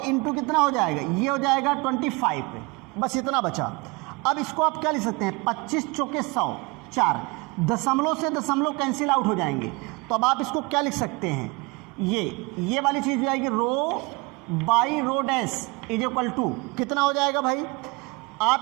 कितना हो जाएगा, ये हो जाएगा 25। बस इतना बचा। अब इसको आप क्या लिख सकते हैं 25 × 100 4, दशमलव से दशमलव कैंसिल आउट हो जाएंगे। तो अब आप इसको क्या लिख सकते हैं, ये वाली चीज़ हो जाएगी row by row dash is equal to कितना हो जाएगा भाई, आप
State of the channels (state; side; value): quieter; left; 26.6 dB